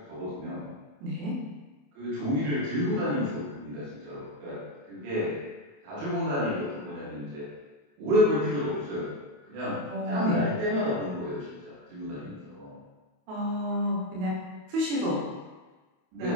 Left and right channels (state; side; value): late; left; 28 ms